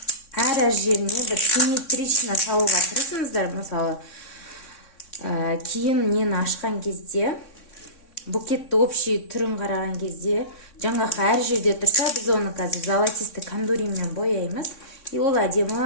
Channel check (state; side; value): late; right; 3.6 ms